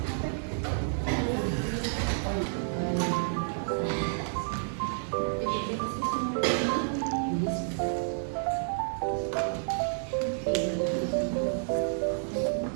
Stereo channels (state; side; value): silent; left; digital silence